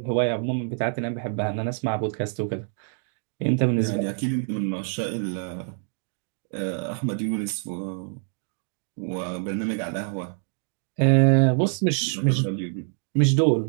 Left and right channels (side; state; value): left; silent; 56 dB below the other